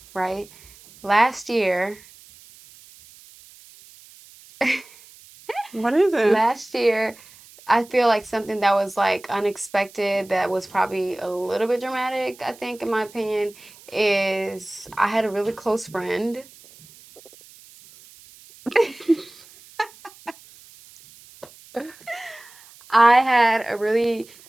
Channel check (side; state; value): right; noise; hiss, 23 dB below the sound